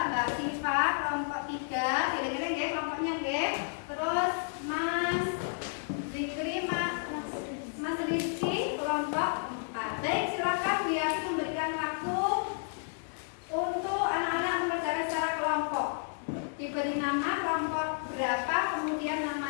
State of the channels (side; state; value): right; silent; digital silence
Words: Siva kelompok 3, kira-kira ya kelompoknya ya. Terus Mas Zikri, Mas Rizky kelompok 4. Baik, silakan Bu Yati memberikan waktu untuk anak-anak mengerjakan secara kelompok. Diberi nama kelompok berapa, kemudian